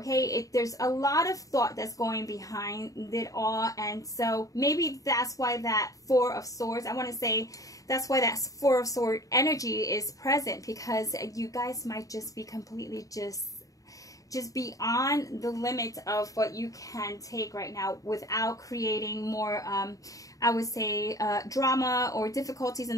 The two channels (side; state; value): right; late; 0.16 ms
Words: there's a lot of thought that's going behind it all, and so maybe that's why that Four of Swords, I want to say that's why that Four of Swords energy is present, because you guys might just be completely just beyond the limit of what you can take right now without creating more, I would say, drama or difficulties in